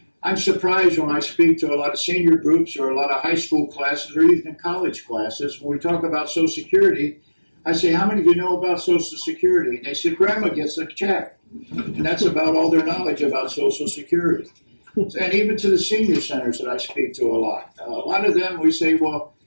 I'm surprised when I speak to a lot of senior groups or a lot of high school classes or even college classes, when we talk about Social Security, I say, how many of you know about Social Security? And they say, Grandma gets a check. And that's about all their knowledge about Social Security. And even to the senior centers that I speak to a lot of them, we say, well,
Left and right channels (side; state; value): both; inverted; correlation -1.00